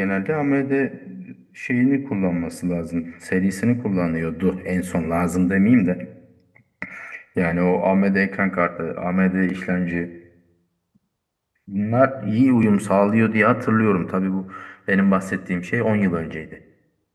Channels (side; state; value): both; identical; correlation 1.00